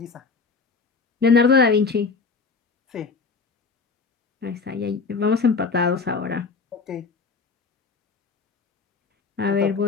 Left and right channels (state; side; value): quieter; right; 4.7 dB